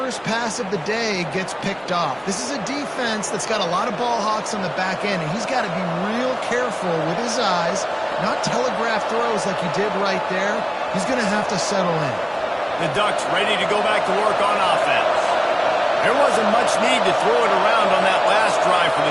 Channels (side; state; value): both; identical; correlation 1.00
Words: pass of the day gets picked off. This is a defense that's got a lot of ball hawks on the back end, and he's got to be real careful with his eyes, not telegraph throws like he did right there. He's going to have to settle in. The Ducks ready to go back to work on offense. There wasn't much need to throw it around on that last drive for